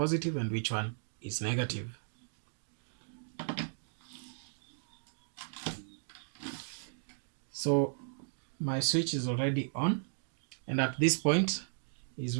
and which one is negative. So my switch is already on, and at this point is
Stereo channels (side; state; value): left; silent; digital silence